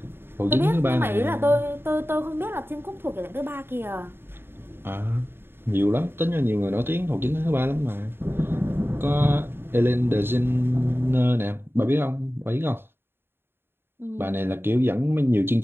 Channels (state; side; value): late; left; 0.11 ms